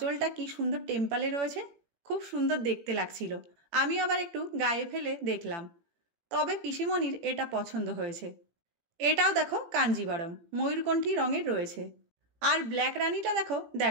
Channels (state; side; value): late; left; 18 ms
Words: কি সুন্দর টেম্পালে রয়েছে, খুব সুন্দর দেখতে লাগছিল। আমি আবার একটু গায়ে ফেলে দেখলাম, তবে পিসিমণির এটা পছন্দ হয়েছে। এটাও দেখো কাঞ্জিবরম ময়ূরকণ্ঠী রঙের রয়েছে। আর ব্ল্যাক রানীটা দেখো